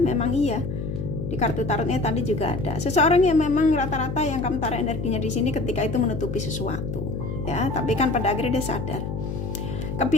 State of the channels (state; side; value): noise; left; hum, 4 dB below the sound